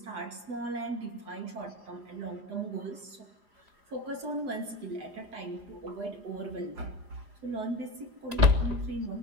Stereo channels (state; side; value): late; left; 4.9 ms